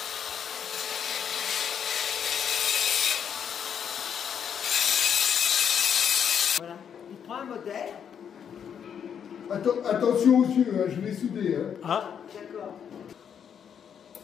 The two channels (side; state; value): right; quieter; 8.0 dB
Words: Voilà. Il prend un modèle. Attention aux yeux, hein, je vais souder. Hein. Ah, D'accord.